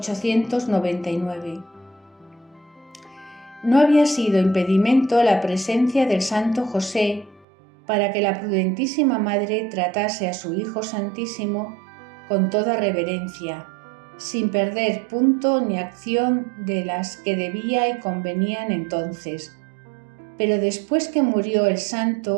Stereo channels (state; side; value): drops out; left; at 7.5 s